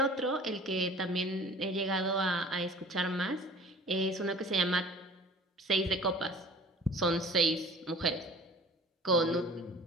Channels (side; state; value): both; normal; correlation 0.46